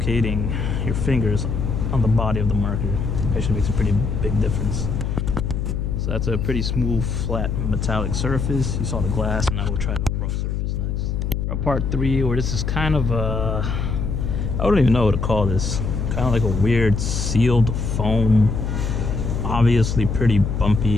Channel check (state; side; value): noise; left; hum, 1 dB below the sound